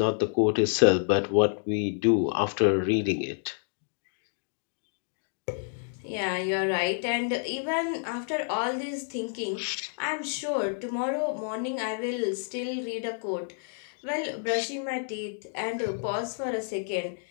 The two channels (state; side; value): silent; right; digital silence